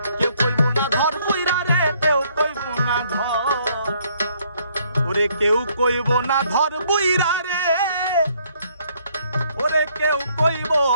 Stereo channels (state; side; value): inverted; both; correlation -0.66